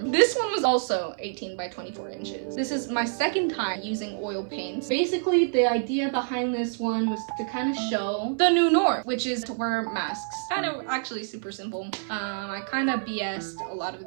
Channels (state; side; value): silent; left; 55 dB below the other